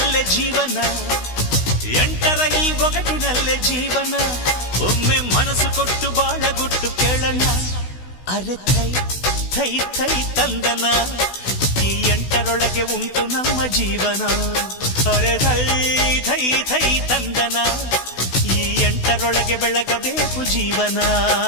ಜೀವನ, ಎಂಟರ ಈ ಒಗಟಿನಲ್ಲೇ ಜೀವನ. ಒಮ್ಮೆ ಮನಸ್ಸು ಕೊಟ್ಟು ಬಾಳಗುಟ್ಟು ಕೇಳಣ್ಣ. ಅರೆ ಥೈ ಥೈ ಥೈ ತಂದನ, ಈ ಎಂಟರೊಳಗೆ ಉಂಟು ನಮ್ಮ ಜೀವನ. ಅರೆ ಥೈ ಥೈ ಥೈ ತಂದನ, ಈ ಎಂಟರೊಳಗೆ ಬೆಳಗಬೇಕು ಜೀವನ.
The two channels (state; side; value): late; right; 16 ms